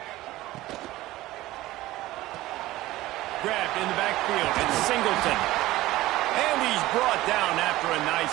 Grabbed in the backfield, it's Singleton. And he's brought down after a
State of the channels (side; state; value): left; quieter; 17.1 dB